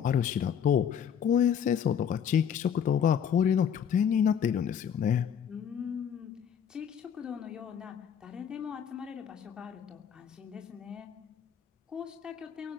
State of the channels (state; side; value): quieter; right; 8.2 dB